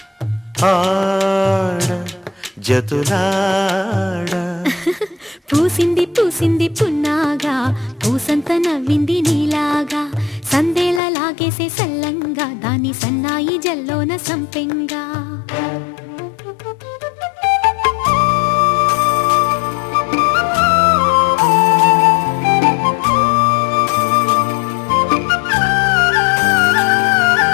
ఆడ జతులాడ పూసింది పూసింది పున్నాగా పూసంత నవ్వింది నీలాగా సందేళ లాగేసే సల్లంగా దాని సన్నాయి జల్లోన సంపెంగా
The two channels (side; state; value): right; drops out; at 11.0 s